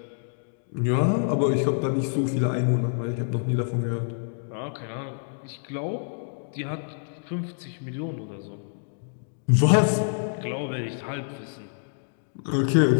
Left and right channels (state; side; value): silent; right; digital silence